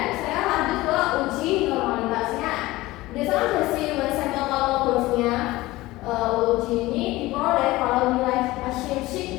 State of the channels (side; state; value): right; quieter; 18.8 dB